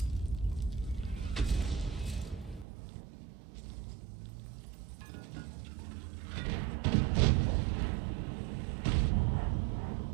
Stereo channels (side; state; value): left; drops out; at 2.7 s